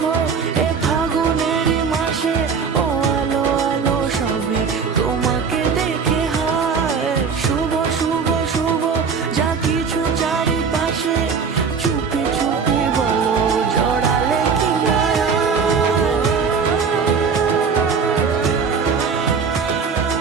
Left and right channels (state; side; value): quieter; left; 5.7 dB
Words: এ ফাগুনেরই মাসে, ও আলো আলো সবে তোমাকে দেখে হায়। শুভ শুভ শুভ যা কিছু চারিপাশে, চুপি চুপি বলো জড়ালে কি না।